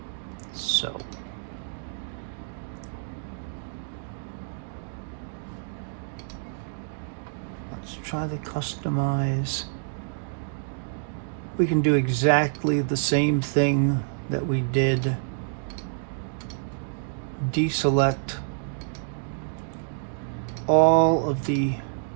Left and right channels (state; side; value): silent; left; digital silence